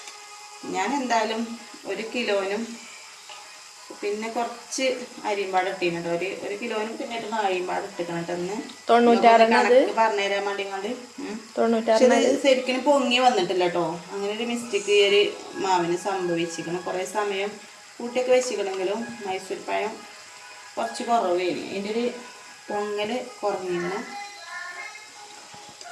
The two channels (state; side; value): identical; both; correlation 1.00